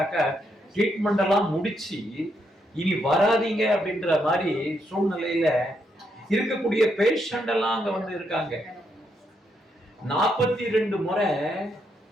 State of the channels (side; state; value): both; normal; correlation 0.78